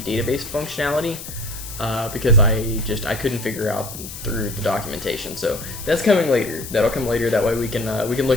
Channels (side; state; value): left; noise; hiss, 11 dB below the sound